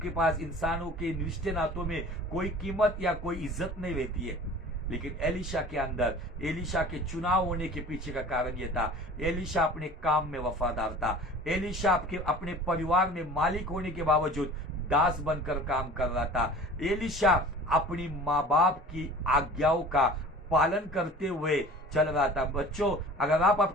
पास इंसानों के रिश्ते नातों में कोई कीमत या कोई इज्जत नहीं रहती है। लेकिन एलिशा के अंदर, एलिशा के चुनाव होने के पीछे का कारण यह था, एलिशा अपने काम में वफादार था। एलिशा अपने परिवार में मालिक होने के बावजूद दास बनकर काम कर रहा था। एलिशा अपनी माँ बाप की आज्ञाओं का पालन करते हुए चल रहा था। बच्चों, अगर आप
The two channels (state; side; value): normal; both; correlation 0.43